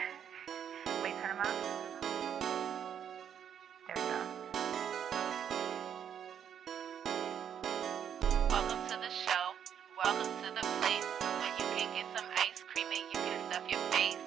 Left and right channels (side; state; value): left; quieter; 8.7 dB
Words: turn them up. There we go. Welcome to the show. Welcome to the place where you can get some ice cream and you can stuff your face.